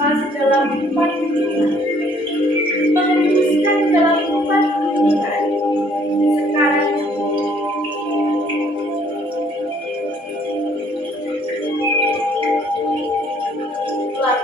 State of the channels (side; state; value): both; normal; correlation 0.61